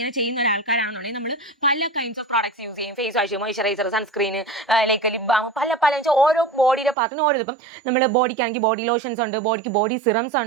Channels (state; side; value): drops out; left; at 7.0 s